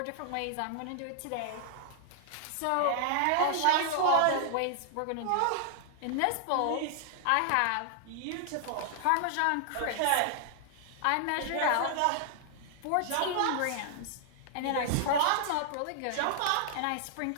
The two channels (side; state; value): both; different; correlation -0.01